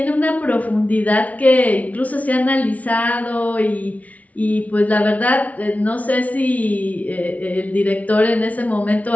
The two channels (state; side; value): late; right; 0.069 ms